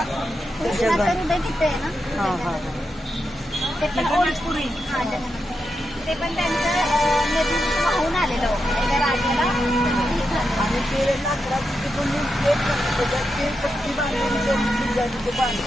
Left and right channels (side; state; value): both; normal; correlation 0.86